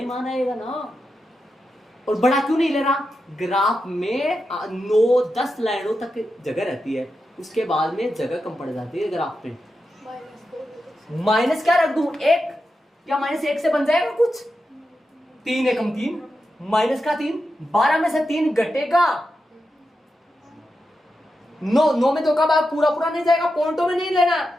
मान आएगा ना, और बड़ा क्यों नहीं ले रहा, ग्राफ में 9-10 लाइनों तक जगह रहती है, उसके बाद में जगह कम पड़ जाती है ग्राफ में, माइनस क्या रख दूं 1, क्या -1 से बन जाएगा कुछ, 3 एकम 3, माइनस का 3, 12 में से 3 घटेगा 9, 9 में 2 का भाग पूरा पूरा नहीं जाएगा, पॉइंटों में नहीं लेना।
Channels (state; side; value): normal; both; correlation 0.88